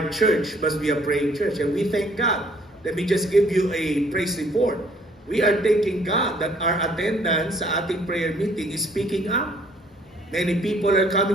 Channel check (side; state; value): both; normal; correlation 0.61